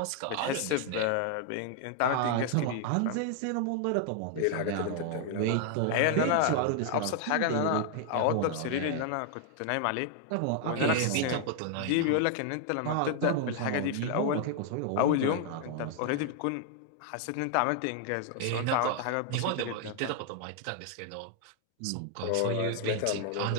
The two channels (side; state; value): both; different; correlation 0.00